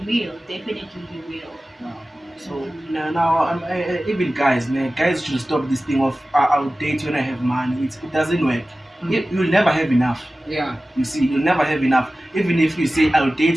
definitely he will. Wow. So now even guys should stop this thing of I'll date when I have money. It doesn't work. You'll never have enough. Yeah. You see, you'll never have enough. Even if you say I'll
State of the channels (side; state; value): both; normal; correlation 0.96